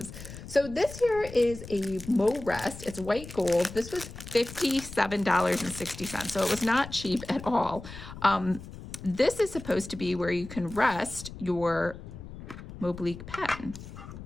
So this here is a MoRest. It's white gold. This was $57.60. So it was not cheap at all. This is supposed to be where you can rest your Moblique pen.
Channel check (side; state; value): left; noise; rumble, 13 dB below the sound